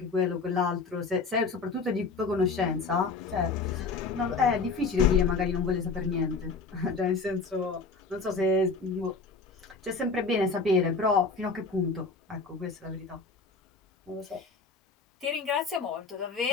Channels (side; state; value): right; quieter; 4.2 dB